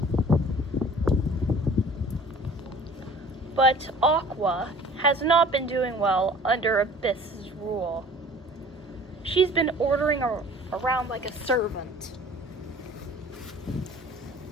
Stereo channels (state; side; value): normal; both; correlation 0.47